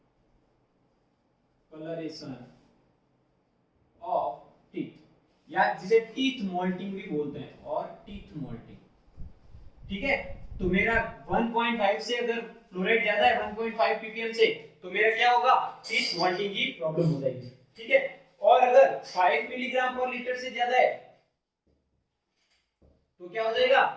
colouration of teeth, या जिसे टीथ मोल्टिंग भी बोलते हैं, और टीथ मोल्टिंग, ठीक है। तो मेरा 1.5 से अगर फ्लोराइड ज्यादा है 1.5 ppm से, तो मेरा क्या होगा, टीथ मोल्टिंग की प्रॉब्लम हो जाएगी, ठीक है। और अगर 5 मिलीग्राम पर लीटर से ज्यादा है तो क्या हो जाएगा,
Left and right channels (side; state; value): both; identical; correlation 1.00